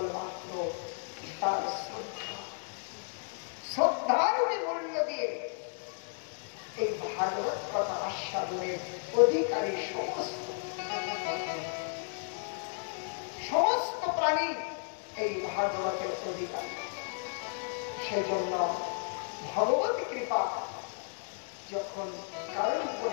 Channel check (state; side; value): silent; right; 56 dB below the other